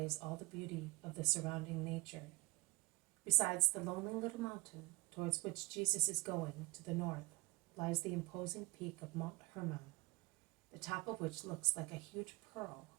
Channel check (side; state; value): left; quieter; 22.4 dB